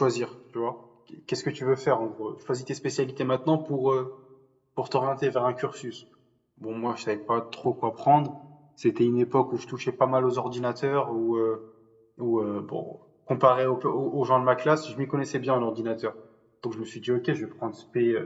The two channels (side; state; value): both; identical; correlation 1.00